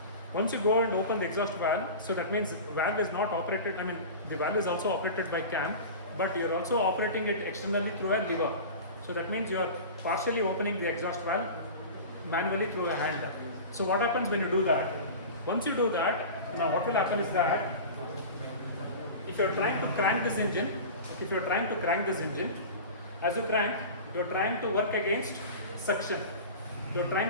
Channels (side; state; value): both; inverted; correlation -0.33